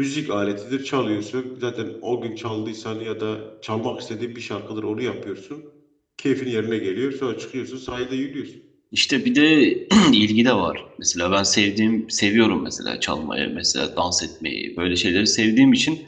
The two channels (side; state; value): both; identical; correlation 1.00